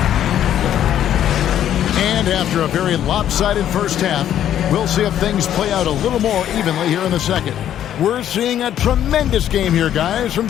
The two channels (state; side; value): quieter; right; 10.8 dB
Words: After a very lopsided first half, we'll see if things play out a little more evenly here in the second. We're seeing a tremendous game here, guys, from